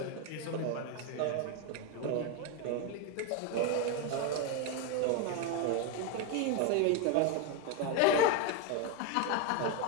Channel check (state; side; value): different; both; correlation 0.02